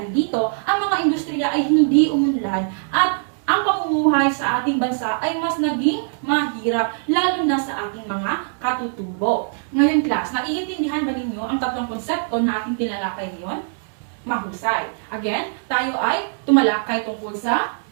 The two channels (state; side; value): silent; left; digital silence